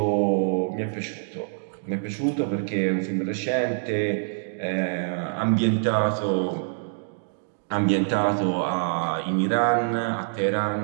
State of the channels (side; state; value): left; silent; digital silence